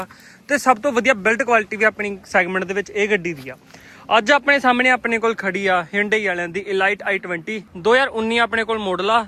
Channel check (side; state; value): both; identical; correlation 1.00